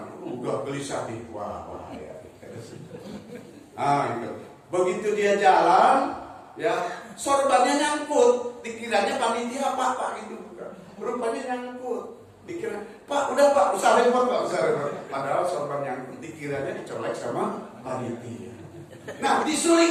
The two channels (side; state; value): both; identical; correlation 1.00